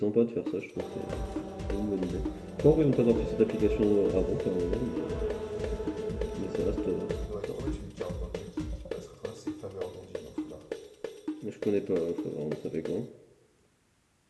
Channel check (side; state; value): both; identical; correlation 1.00